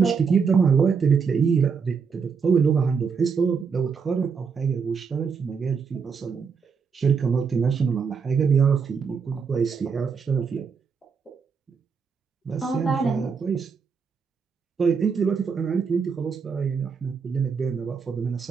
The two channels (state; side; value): quieter; left; 5.8 dB